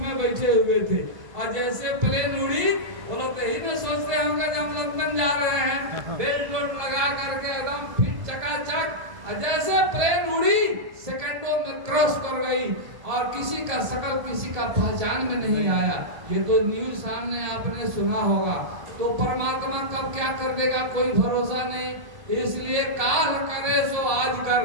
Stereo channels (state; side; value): late; left; 1.7 ms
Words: बैठे हुए थे। और जैसे प्लेन उड़ी, वो लोग तो ही नहीं सोचते होंगे जब हम लंदन जा रहे हैं, बेल्ट लगा करके एकदम फिट चकाचक, और जैसे प्लेन उड़ी सेकंडों में क्रॉस कर गई, और किसी का शकल किसी का पहचान में नहीं आया। ये तो न्यूज सामने आपने सुना होगा। तो परमात्मा कब क्या कर देगा कोई भरोसा नहीं। इसलिए काल करे सो आज कर,